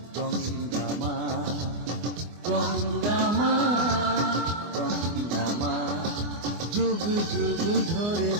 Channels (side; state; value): left; late; 24 ms